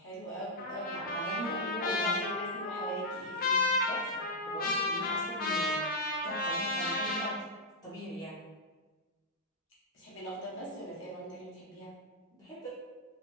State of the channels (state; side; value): normal; both; correlation -0.04